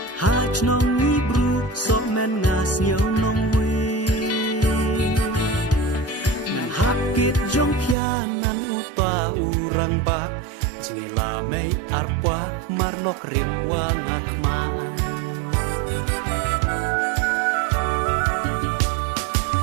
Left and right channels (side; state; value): left; drops out; at 8.0 s